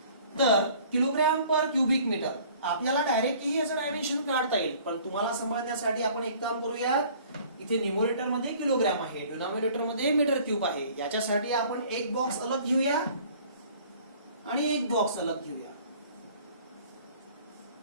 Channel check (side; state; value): both; inverted; correlation -0.52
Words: तर किलोग्राम पर क्यूबिक मीटर आपल्याला डायरेक्टली याचं डायमेन्शन काढता येईल, पण तुम्हाला समजण्यासाठी आपण एक काम करूयात. इथे न्यूमरेटर मध्ये किलोग्राम आहे, डिनॉमिनेटर मध्ये मीटर क्यूब आहे. याच्यासाठी आपण एक बॉक्स अलग घेऊया आणि एक बॉक्स अलग घेऊया.